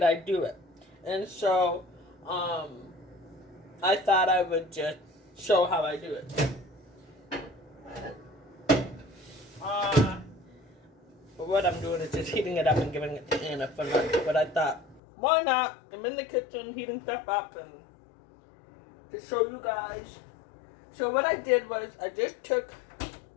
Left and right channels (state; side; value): drops out; right; at 15.0 s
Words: I do it. And so I thought I would just show how I do it. What I'm doing is just heating it up and giving it to Anna for lunch. But I thought, why not? I'm in the kitchen heating stuff up and to show you guys. So what I did was I just took